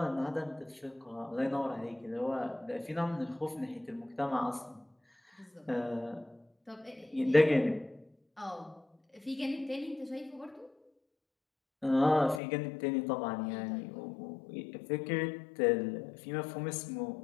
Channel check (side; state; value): right; drops out; at 12.4 s